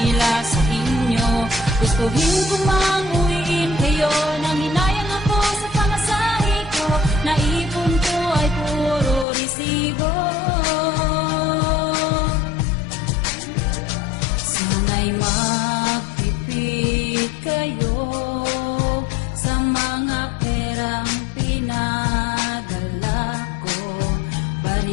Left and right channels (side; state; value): right; drops out; at 9.2 s